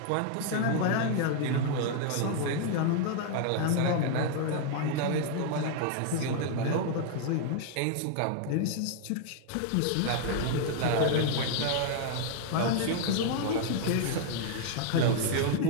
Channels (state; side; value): different; both; correlation 0.00